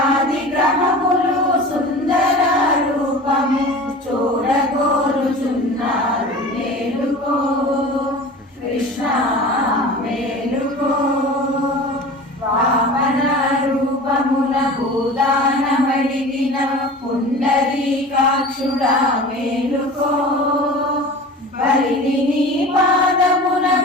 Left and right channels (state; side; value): normal; both; correlation 0.37